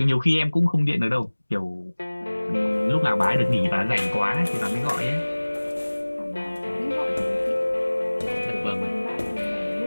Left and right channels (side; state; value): both; inverted; correlation -1.00